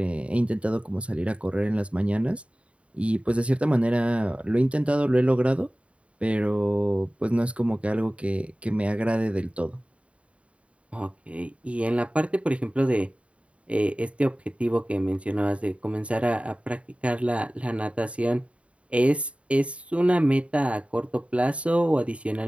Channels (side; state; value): left; late; 0.062 ms